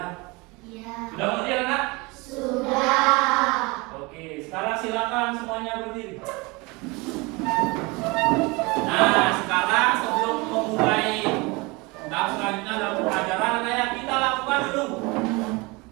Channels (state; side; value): quieter; left; 25.7 dB